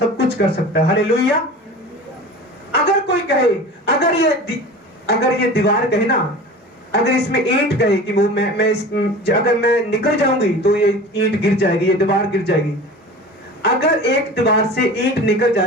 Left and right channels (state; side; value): normal; both; correlation 0.36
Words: कुछ कर सकता है। हालेलुया। अगर कोई कहे, अगर ये दीवार कहे ना, अगर इसमें ईंट कहे कि वो अगर मैं निकल जाऊंगी तो ये ईंट गिर जाएगी, ये दीवार गिर जाएगी। अगर एक दीवार से ईंट निकल